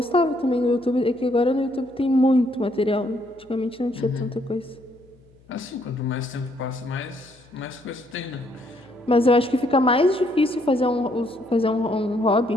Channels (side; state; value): left; noise; hum, 29 dB below the sound